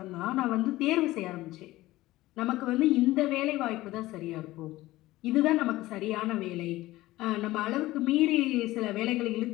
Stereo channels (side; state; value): right; quieter; 17.4 dB